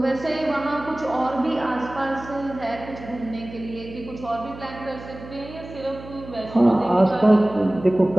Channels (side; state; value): right; noise; hum, 15 dB below the sound